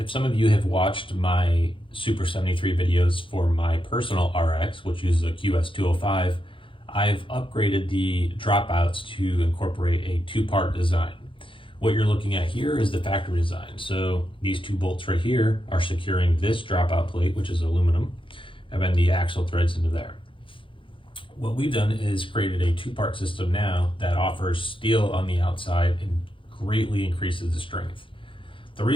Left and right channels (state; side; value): late; right; 0.25 ms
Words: some of you have watched my Super73 videos for my personal RX, which uses a QS205, I've upgraded the dropouts to incorporate a two-part design. What you're looking at here is the factory design. So these two bolts right here are securing this dropout plate, which is aluminum, and then the axle threads into there. What we've done is created a two-part system now that offers steel on the outside and greatly increases the strength. The